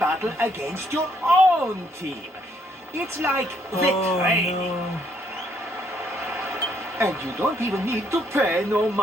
against your own team. It's like the training. No. And you don't even need to pay no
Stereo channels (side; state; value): both; normal; correlation 0.70